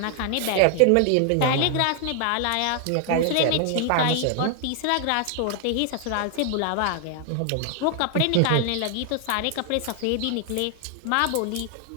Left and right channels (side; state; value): both; different; correlation 0.00